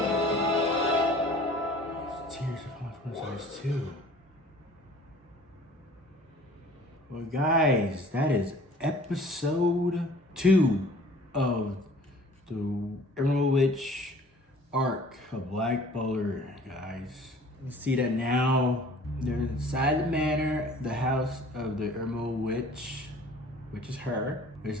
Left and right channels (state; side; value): normal; both; correlation 0.49